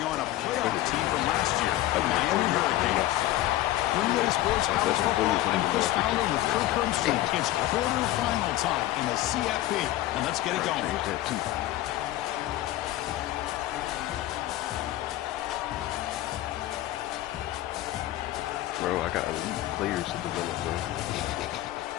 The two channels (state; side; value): quieter; right; 15.2 dB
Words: on a playoff team from last year, the Miami Hurricanes. Greenway Sports College Football, I'm Chris Fowler with Kirk Hermstrom. It's quarterfinal time in the CFP, and let's get it going. Bro, I got elite players to develop, bro.